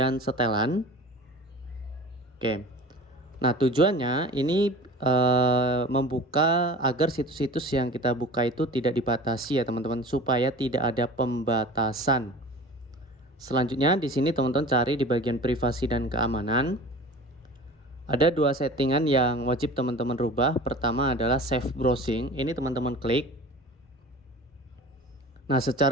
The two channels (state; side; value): normal; both; correlation 0.39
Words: setelan. Oke. Nah, tujuannya ini membuka agar situs-situs yang kita buka itu tidak dibatasi ya teman-teman, supaya tidak ada pembatasan. Selanjutnya di sini teman-teman cari di bagian privasi dan keamanan. Ada dua settingan yang wajib teman-teman rubah. Pertama adalah save browsing. Ini teman-teman klik. Nah,